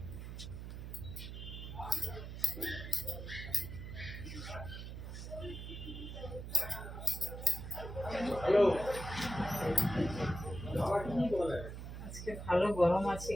আজকে ভালো গরম আছে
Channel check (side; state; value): right; noise; hum, 8 dB below the sound